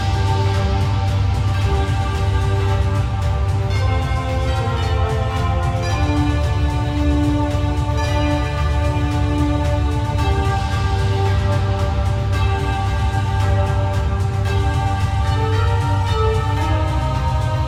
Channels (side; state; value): both; identical; correlation 1.00